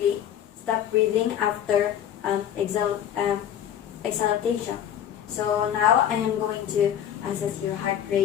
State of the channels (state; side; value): quieter; right; 10.1 dB